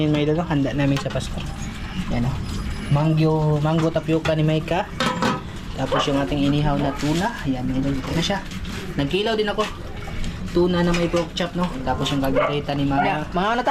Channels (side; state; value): both; identical; correlation 1.00